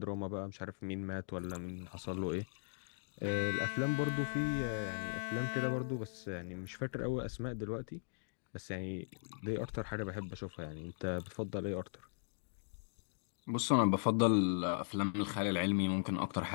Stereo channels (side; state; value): right; silent; digital silence